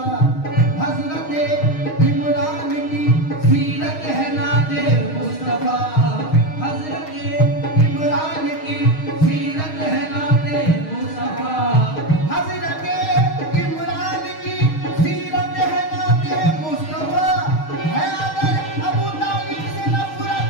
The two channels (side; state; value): right; late; 6.4 ms